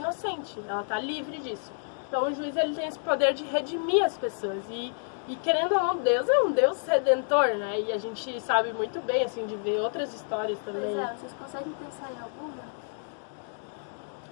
ela tá livre disso. Então, o juiz, ele tem esse poder de redimir as pessoas. E querendo ou não, Deus é um Deus redentor, né? E a gente sabe muito bem, assim, de ver outras histórias também. Pois vocês conseguem pensar em alguma?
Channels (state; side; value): silent; right; digital silence